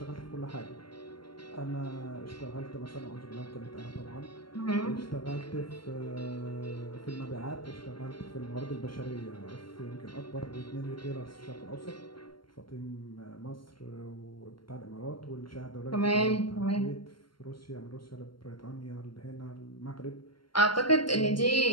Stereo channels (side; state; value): right; late; 0.72 ms